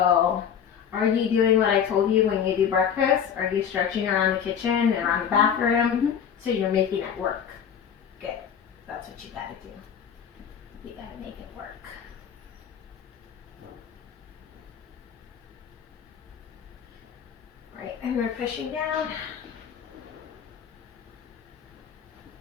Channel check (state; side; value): quieter; right; 8.1 dB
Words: are you doing what I told you when you do breakfast? Are you stretching around the kitchen and around the bathroom? Mm-hmm. So you're making it work. Good. That's what you gotta do. You gotta make it work. Right, and we're pushing down.